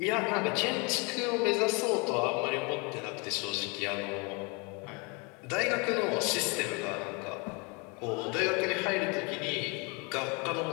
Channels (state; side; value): quieter; right; 31.0 dB